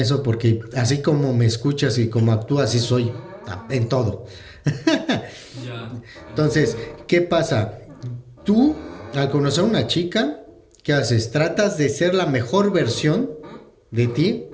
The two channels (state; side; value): identical; both; correlation 1.00